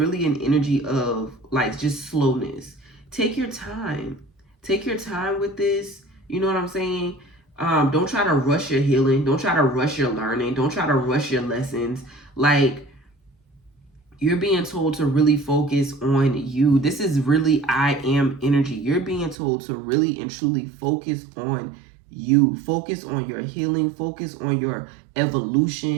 an energy of like just slowness. Take your time. Take your time with this. You know what I'm saying? Don't try to rush your healing. Don't try to rush your learning. Don't try to rush your lessons. Like, you're being told to really focus on you. This is really I am energy. You're being told to really and truly focus on you. Focus on your healing. Focus on your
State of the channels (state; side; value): drops out; left; at 19.4 s